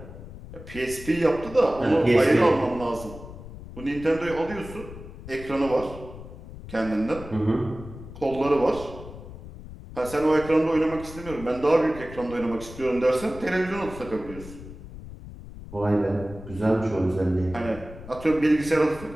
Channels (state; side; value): noise; left; rumble, 14 dB below the sound